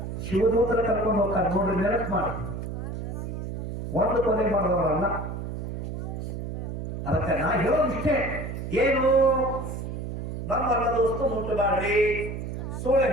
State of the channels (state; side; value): noise; right; hum, 6 dB below the sound